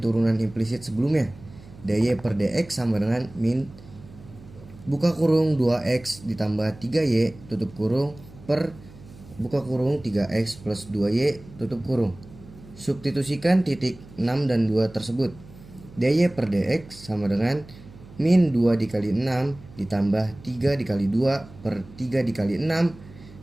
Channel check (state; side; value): noise; right; hum, 20 dB below the sound